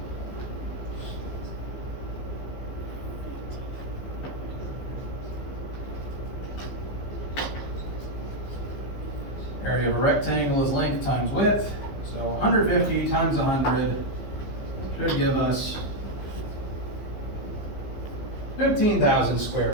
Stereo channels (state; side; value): late; right; 15 ms